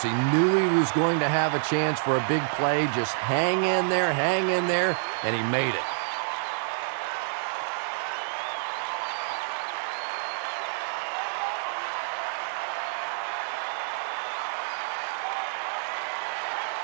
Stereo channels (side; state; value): left; silent; 60 dB below the other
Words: He knew he was going to have a chance for a big play. Just hang in there, and he made it.